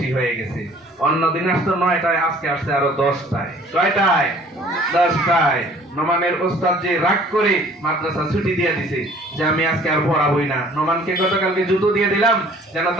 হয়ে গেছে। অন্য দিন আসতো 9টায়, আজকে আসছে আরো 10টায়। কয়টায়? 10টায়। নোমানের ওস্তাদ যে রাগ করে মাদ্রাসা ছুটি দিয়ে দিছে যে আমি আজকে আর পড়াবই না। নোমানকে গতকালকে জুতো দিয়ে দিলাম যেন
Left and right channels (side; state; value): both; normal; correlation 0.53